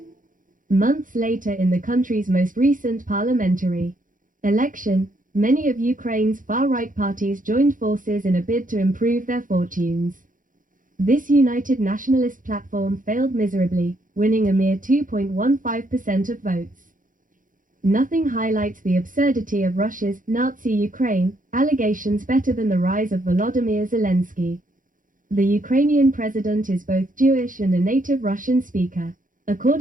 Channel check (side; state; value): left; late; 0.39 ms